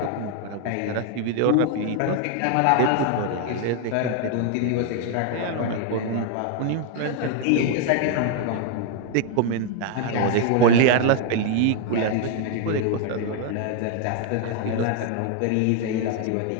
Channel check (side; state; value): both; different; correlation 0.00